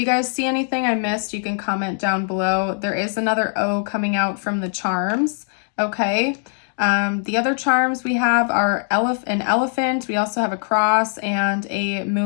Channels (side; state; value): right; silent; 55 dB below the other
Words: guys see anything I missed, you can comment down below. There is another O coming out from the charms. Okay. The other charms we have are an elephant. We also have a cross and a